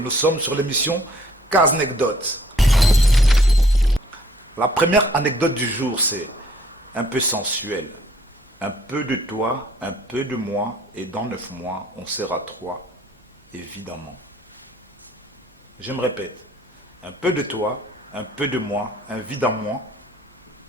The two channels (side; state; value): both; normal; correlation 0.60